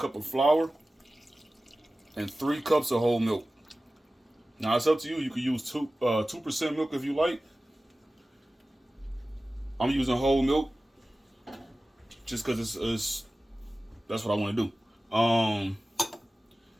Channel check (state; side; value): normal; both; correlation 0.96